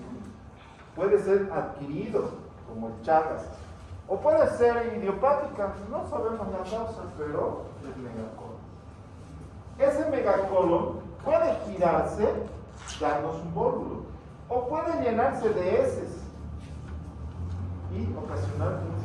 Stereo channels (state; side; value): identical; both; correlation 1.00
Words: puede ser adquirido, como el Chagas, o puede ser idiopática, no sabemos la causa, pero es megacolon. Ese megacolon puede girarse, darnos un bólulo, o puede llenarse de heces y ocasionar